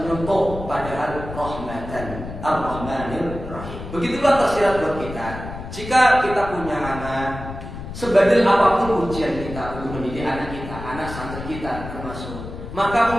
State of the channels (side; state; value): left; noise; rumble, 10 dB below the sound